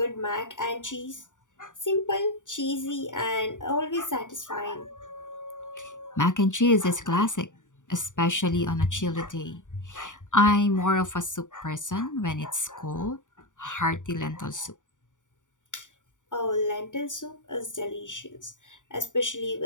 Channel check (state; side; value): late; right; 0.86 ms